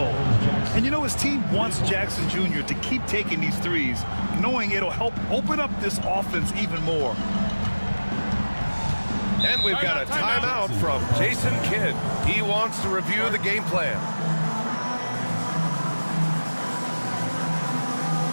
And you know, his team wants Jackson Jr. to keep taking these threes, knowing it'll help open up this offense even more. And we've got a timeout from Jason Kidd. He wants to review the game plan.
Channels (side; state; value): both; inverted; correlation -1.00